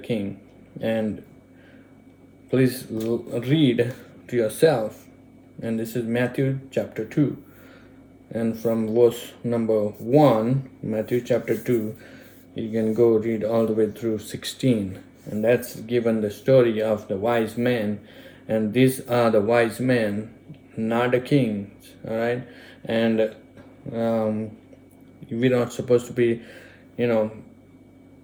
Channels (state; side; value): identical; both; correlation 1.00